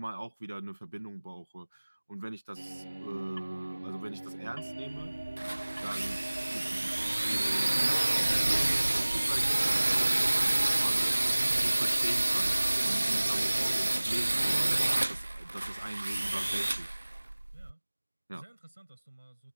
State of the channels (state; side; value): inverted; both; correlation -1.00